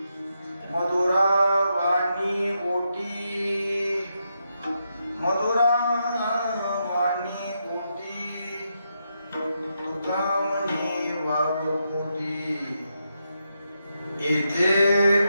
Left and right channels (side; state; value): both; inverted; correlation -0.83